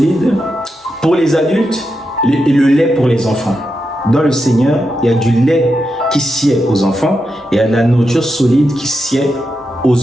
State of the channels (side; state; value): both; normal; correlation 0.86